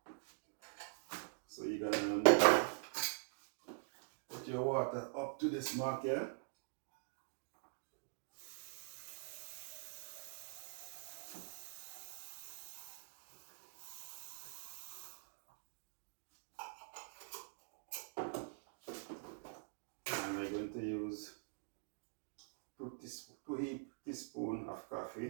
So you're going to put your water up to this mark here. And we're going to use 2 teaspoons of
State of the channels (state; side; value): silent; left; digital silence